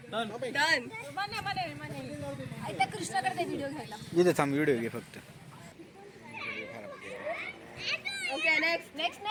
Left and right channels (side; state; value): both; identical; correlation 1.00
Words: डन. कृष्णाकडे व्हिडिओ घ्यायला. इथे थांब व्हिडिओ घे फक्त. Okay next next